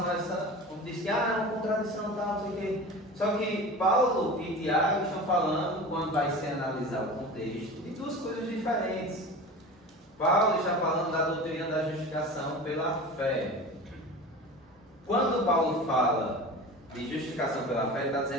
a essa... Diz que, é uma contradição, tal, não sei o quê. Só que Paulo e Tiago estão falando, quando vai se analisar o contexto, de duas coisas diferentes. Paulo está falando da doutrina da justificação pela fé. Quando Paulo fala de justificação pela fé, ele está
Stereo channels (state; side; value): normal; both; correlation 0.34